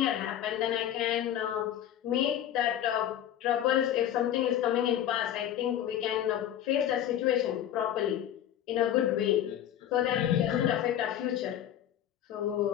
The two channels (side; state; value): right; quieter; 11.0 dB